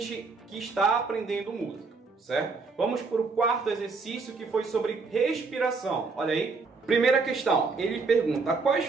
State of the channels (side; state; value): left; quieter; 4.3 dB